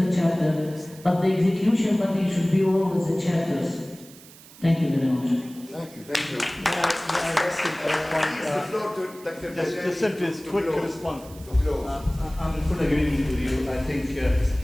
chapter, but the execution body should be always the chapters. Thank you very much. Thank you. May I just simply quick response. I'm in full agreement with you. I think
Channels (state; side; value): noise; right; hiss, 21 dB below the sound